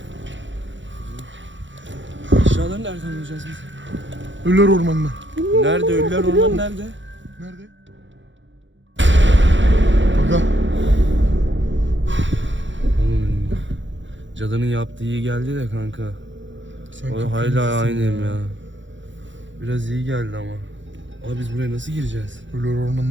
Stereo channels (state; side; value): late; left; 0.54 ms